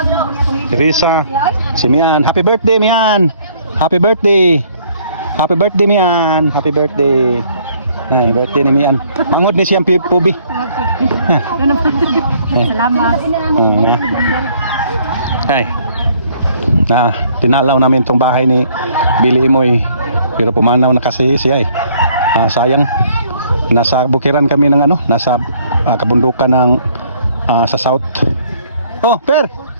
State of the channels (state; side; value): inverted; both; correlation -0.62